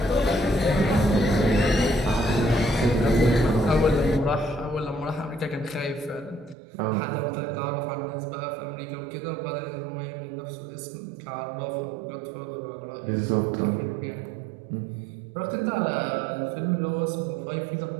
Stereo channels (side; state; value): left; drops out; at 6.6 s